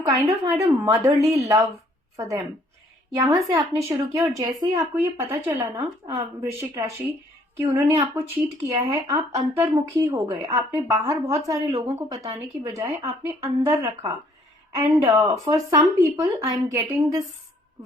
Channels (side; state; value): both; normal; correlation 0.63